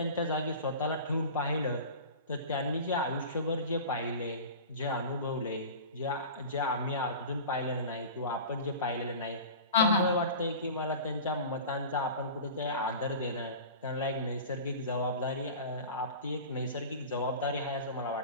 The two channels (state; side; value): inverted; both; correlation -0.35